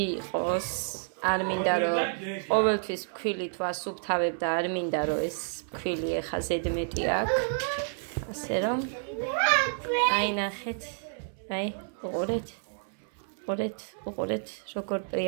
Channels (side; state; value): left; silent; 58 dB below the other